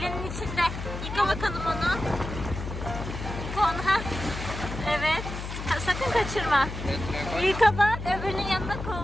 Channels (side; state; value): left; noise; hum, 7 dB below the sound